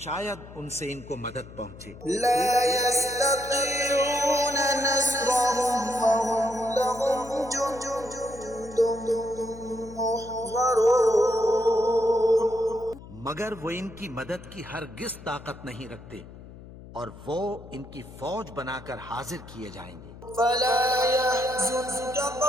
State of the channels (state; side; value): noise; left; hum, 17 dB below the sound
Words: ان سے ان کو مدد پہنچے۔ لا يستطيعون نصرهم وهم لهم جند محضرون. مگر وہ ان کی مدد کی ہرگز طاقت نہیں رکھتے اور وہ ان کی فوج بنا کر حاضر کیے جائیں گے۔ فلا يحزنك